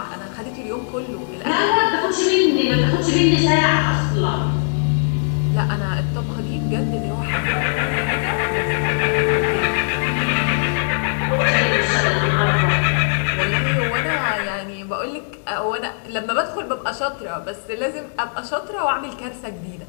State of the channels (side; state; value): right; silent; 66 dB below the other